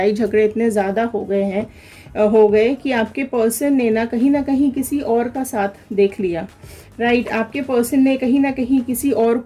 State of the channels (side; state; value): both; identical; correlation 1.00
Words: झगड़े इतने ज़्यादा हो गए कि आपके पर्सन ने ना कहीं किसी और का साथ देख लिया। राइट, आपके पर्सन ने कहीं ना कहीं किसी और